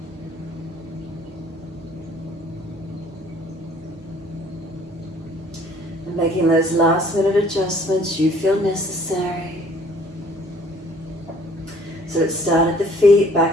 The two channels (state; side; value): normal; both; correlation 0.57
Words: And making those last minute adjustments you feel necessary. So let's start at the feet,